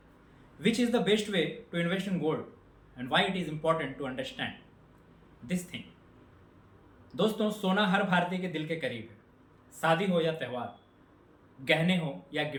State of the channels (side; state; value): both; identical; correlation 1.00